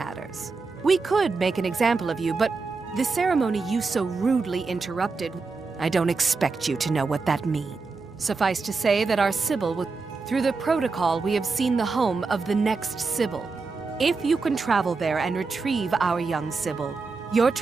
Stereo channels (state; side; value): quieter; left; 4.3 dB